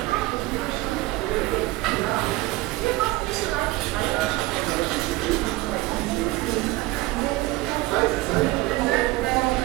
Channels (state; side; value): quieter; left; 19.7 dB